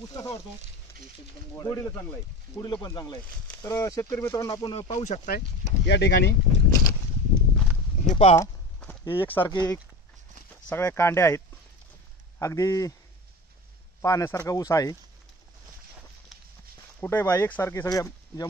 ऊस कसा वाटतो? एकदम गोड गोडीला चांगला आहे, गोडीला पण चांगला आहे। तर शेतकरी मित्रांनो, आपण पाहू शकताय या ठिकाणी हे पहा, हे एकसारखे सगळ्या कांड्या आहेत, अगदी पाहण्यासारखा ऊस आहे। कुठे बा एकसारखे सगळ्या ज्या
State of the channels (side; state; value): both; normal; correlation 0.32